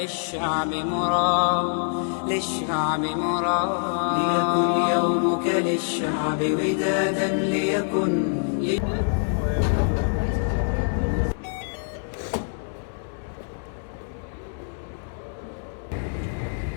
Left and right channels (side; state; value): right; silent; digital silence